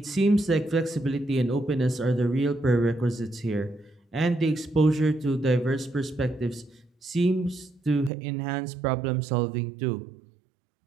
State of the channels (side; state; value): left; drops out; at 8.1 s